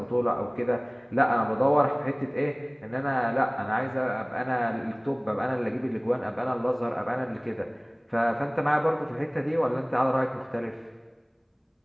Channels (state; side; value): identical; both; correlation 1.00